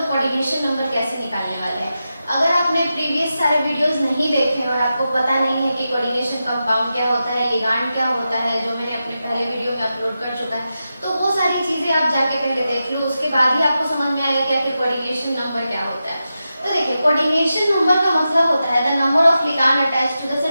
Coordination number कैसे निकालने वाले हैं। अगर आपने प्रीवियस सारे वीडियोस नहीं देखे और आपको पता नहीं है कि कोऑर्डिनेशन कंपाउंड क्या होता है, लिगांड क्या होता है, जो मैंने अपने पहले वीडियो में अपलोड कर चुका है, तो वो सारी चीजें आप जाके पहले देख लो, उसके बाद ही आपको समझ में आएगा कि आखिर कोऑर्डिनेशन नंबर क्या होता है। तो देखिए, कोऑर्डिनेशन नंबर का मतलब होता है the number of ligand attached to the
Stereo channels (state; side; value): inverted; both; correlation -0.90